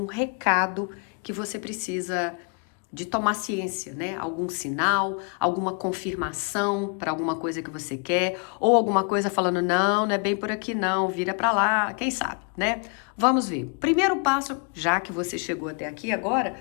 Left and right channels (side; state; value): right; quieter; 38.6 dB